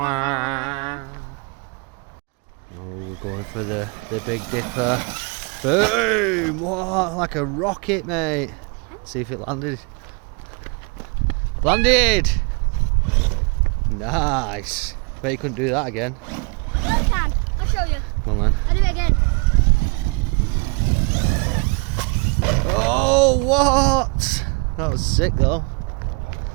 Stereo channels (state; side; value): quieter; left; 31.7 dB